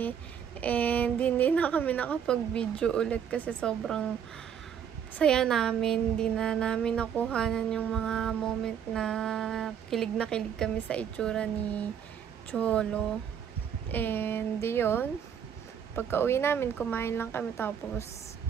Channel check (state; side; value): quieter; left; 8.3 dB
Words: And hindi na kami nakapag-video ulit kasi sobrang saya namin. Hindi na namin nakuhanan yung mga moment na kilig kami sa itsura ni Cholo. And yun, pagka-uwi namin, kumain lang kami tapos